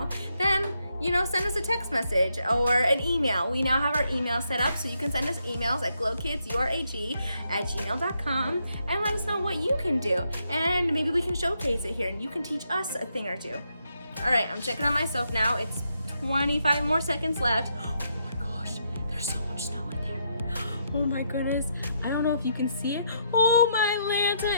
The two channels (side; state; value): both; inverted; correlation -0.77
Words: then send us a text message or an email. We now have our email set up, so you can send us emails at glowkidsurag@gmail.com and let us know what you can do. And maybe we can showcase it here and you can teach us a thing or two. All right, I'm checking on myself now. It's 25 more seconds left. Oh my gosh, there's so much snow in there. Oh my goodness, I don't know if you can see it. Oh my